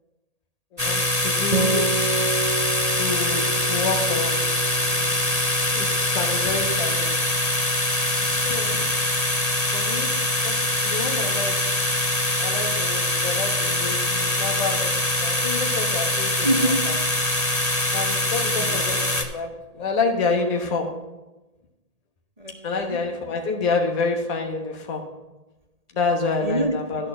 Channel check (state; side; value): late; left; 1.8 ms